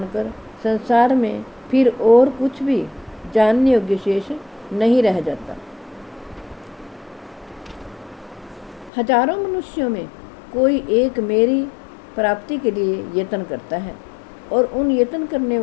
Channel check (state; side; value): drops out; right; at 8.9 s